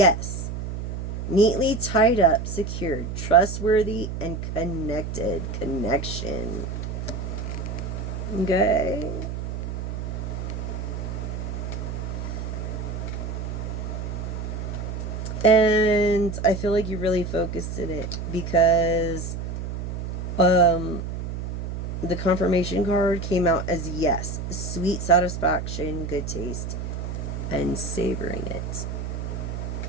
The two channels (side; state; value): right; noise; hum, 5 dB below the sound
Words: Neatly tied up, secured, trustworthy, and connected. Connection. Okay. And I feel like you really focused in it because the confirmation card came out as yes. Sweet satisfaction, good taste, and savoring it.